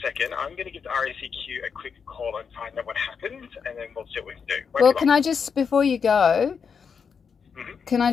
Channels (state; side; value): quieter; right; 6.3 dB